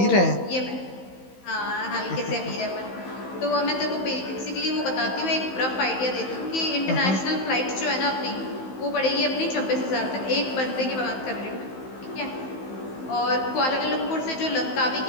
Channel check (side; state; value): right; late; 15 ms